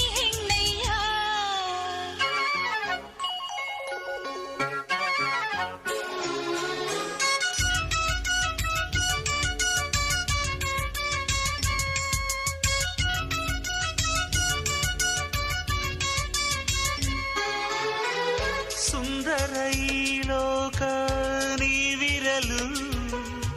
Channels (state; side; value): identical; both; correlation 1.00